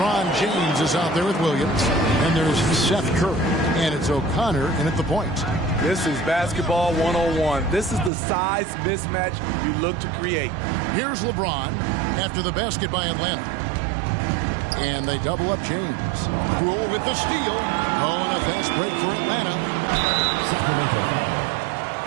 James is out there with Williams. And there's Seth Curry. And it's O'Connor in at the point. This is basketball 101. This is the size mismatch you look to create. Here's LeBron after the basket by Atlanta. And they double up James. Rule with the steal. Oh, and a fast break for Atlanta. Sacramento foul.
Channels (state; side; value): drops out; left; at 8.1 s